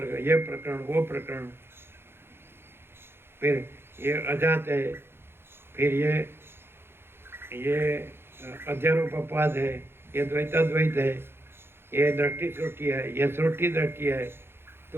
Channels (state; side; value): late; left; 0.11 ms